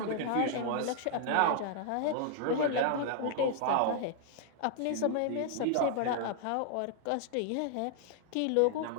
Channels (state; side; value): different; both; correlation -0.01